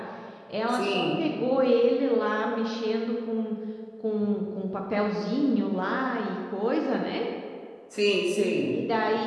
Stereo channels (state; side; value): identical; both; correlation 1.00